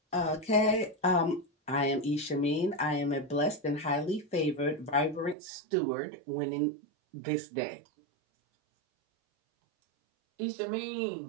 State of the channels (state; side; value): drops out; left; at 5.4 s